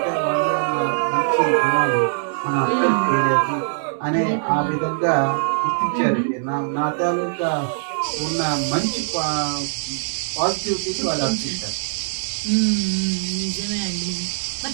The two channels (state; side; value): silent; left; 64 dB below the other